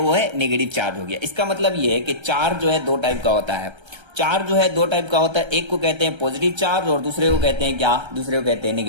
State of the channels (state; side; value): late; left; 1.3 ms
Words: वो है नेगेटिव चार्ज हो गया। इसका मतलब ये है कि चार्ज जो है 2 टाइप का होता है। चार्ज जो है 2 टाइप का होता है, एक को कहते हैं पॉजिटिव चार्ज और दूसरे को कहते हैं क्या, दूसरे को कहते हैं